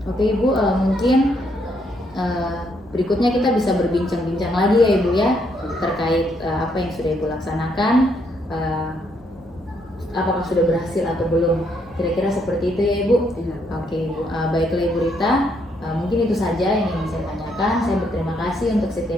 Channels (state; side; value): normal; both; correlation 0.73